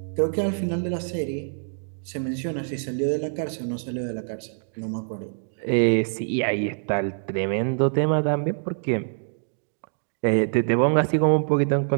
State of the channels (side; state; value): left; silent; digital silence